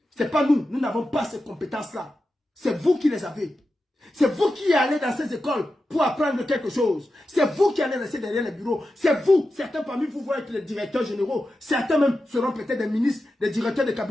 C'est pas nous n'avons pas ces compétences-là. C'est vous qui les avez. C'est vous qui allez dans ces écoles pour apprendre quelque chose. C'est vous qui allez rester derrière les bureaux. C'est vous, certains parmi vous vont être les directeurs généraux. Certains même seront peut-être des ministres, des directeurs de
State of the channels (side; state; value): both; normal; correlation 0.91